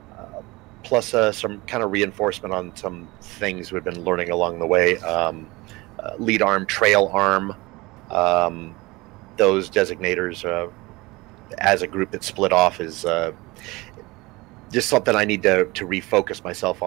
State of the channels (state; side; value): quieter; left; 22.3 dB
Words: plus some kind of reinforcement on some things we've been learning along the way. Lead arm, trail arm, those designators as a group that split off is just something I need to refocus myself